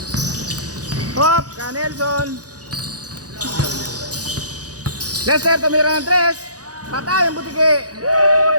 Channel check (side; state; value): left; late; 0.67 ms